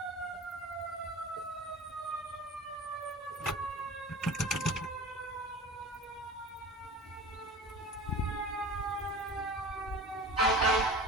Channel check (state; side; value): normal; both; correlation 0.36